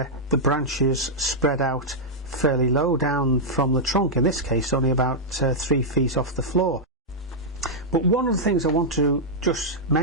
the branches spread out fairly low down from the trunk, in this case only about 3 feet off the floor. But one of the things I want to just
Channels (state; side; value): normal; both; correlation -0.07